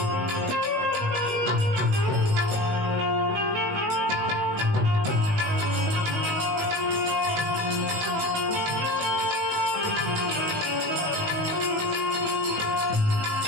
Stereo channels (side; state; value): left; late; 18 ms